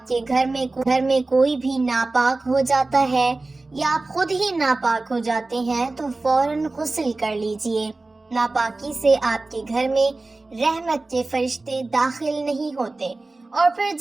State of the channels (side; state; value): left; quieter; 3.3 dB